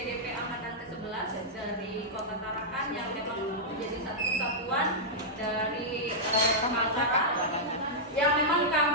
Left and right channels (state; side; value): normal; both; correlation -0.09